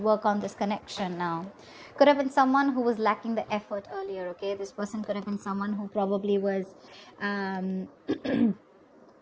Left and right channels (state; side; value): identical; both; correlation 1.00